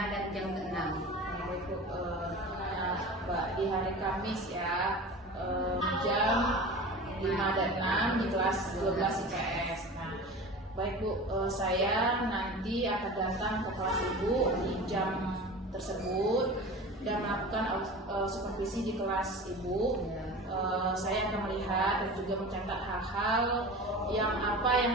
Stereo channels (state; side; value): normal; both; correlation 0.35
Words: dan jam 6. Baik Bu, Mbak, di hari Kamis ya, jam 5 dan 6 di kelas 12 IPS. Nah, baik Bu, saya nanti akan datang ke kelas Ibu di jam tersebut dan melakukan supervisi di kelas Ibu. Saya akan melihat dan juga mencatat hal-hal yang